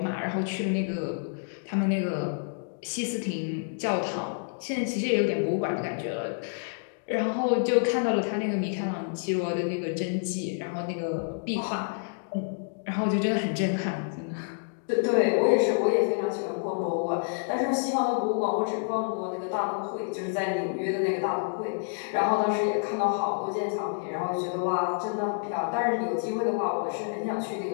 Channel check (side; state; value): right; silent; digital silence